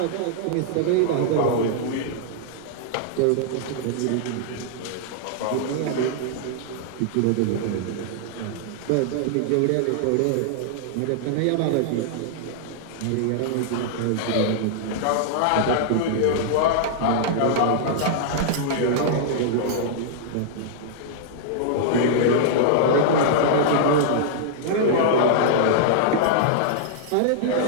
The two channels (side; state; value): both; different; correlation -0.01